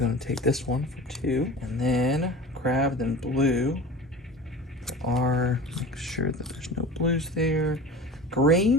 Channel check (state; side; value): normal; both; correlation 0.36